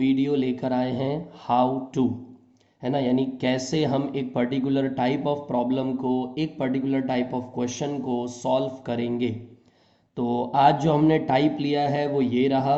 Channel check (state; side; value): identical; both; correlation 1.00